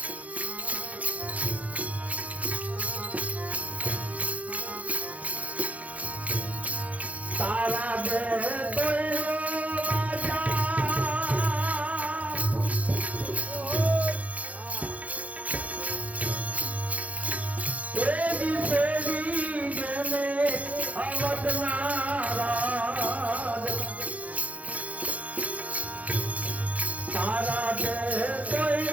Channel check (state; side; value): late; left; 0.069 ms